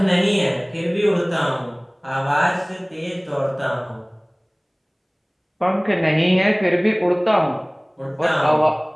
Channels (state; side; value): identical; both; correlation 1.00